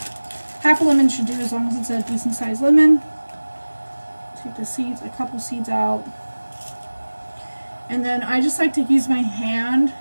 Half a lemon should do, as long as it's a decent sized lemon. Take the seeds, a couple seeds out. And then I just like to use my hand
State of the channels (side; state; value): both; inverted; correlation -1.00